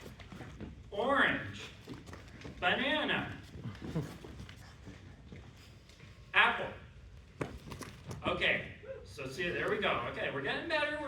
orange, banana, apple. Okay, so see, there we go. Okay, we're getting better,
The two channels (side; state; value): both; identical; correlation 1.00